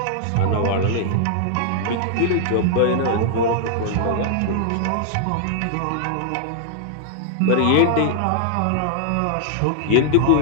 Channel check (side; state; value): both; different; correlation -0.01